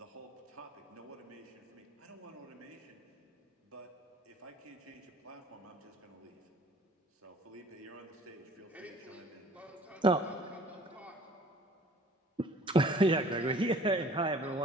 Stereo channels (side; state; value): both; normal; correlation 0.51